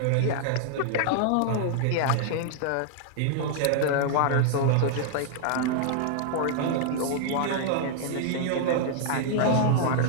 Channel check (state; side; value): different; both; correlation -0.01